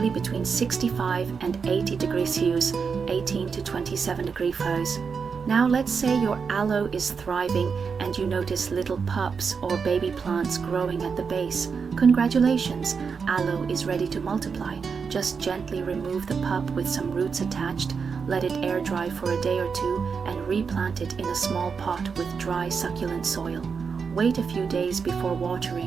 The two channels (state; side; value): quieter; left; 5.7 dB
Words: between 65 and 80 degrees Celsius, 18 to 27 degrees Fahrenheit. Now let's say your aloe is thriving and you notice little pups or baby plants growing at the base. Congratulations, aloe is ready to multiply. Just gently remove the pup with some roots attached, let it air dry for a day or two, and replant it in a small pot with dry succulent soil. Wait a few days before